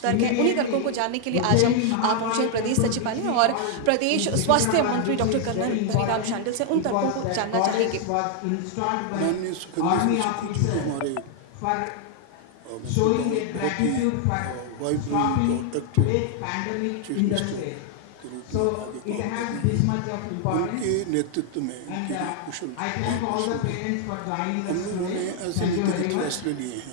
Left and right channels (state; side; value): different; both; correlation 0.00